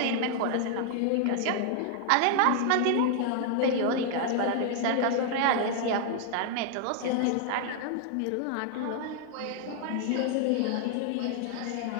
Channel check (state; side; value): different; both; correlation 0.00